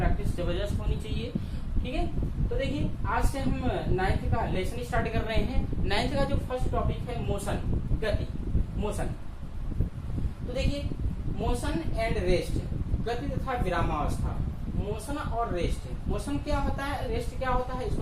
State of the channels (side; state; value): both; identical; correlation 1.00